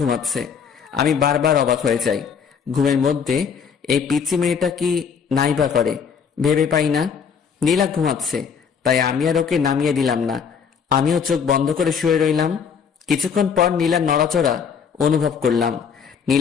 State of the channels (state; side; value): quieter; right; 6.8 dB